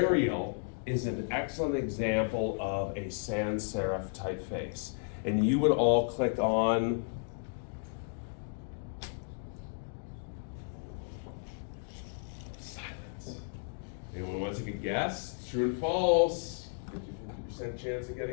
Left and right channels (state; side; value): silent; right; digital silence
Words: is an excellent example of a sans serif typeface. And you would all click on silence. Anyone want to take a guess? True and false. 50% chance of